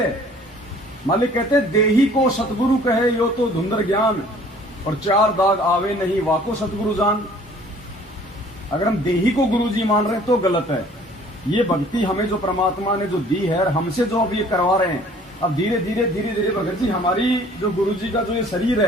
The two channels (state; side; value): normal; both; correlation 0.53